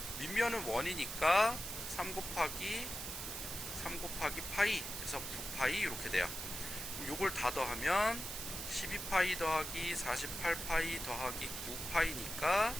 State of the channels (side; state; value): right; noise; hiss, 6 dB below the sound